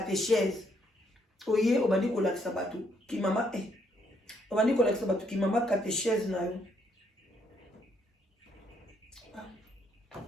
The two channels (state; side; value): normal; both; correlation 0.72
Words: oye obandi kolakisa bato ki mama obandi kolakisa bato ki mama catéchèse na yo